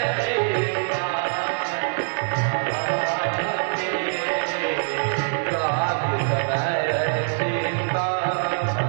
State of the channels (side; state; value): left; silent; digital silence